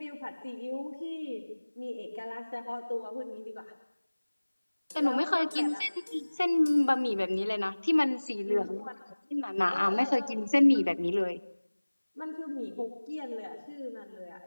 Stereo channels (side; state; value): both; inverted; correlation -1.00